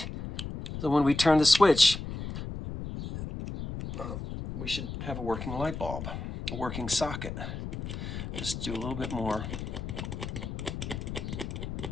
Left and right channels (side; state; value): left; noise; rumble, 7 dB below the sound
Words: So when we turn the switch, we should have a working light bulb, a working socket. Just do a little bit more.